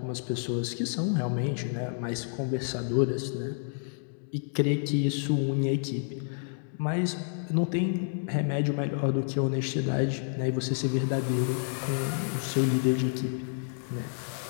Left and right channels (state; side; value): silent; right; digital silence